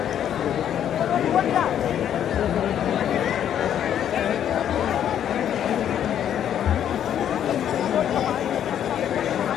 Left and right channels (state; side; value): quieter; right; 9.9 dB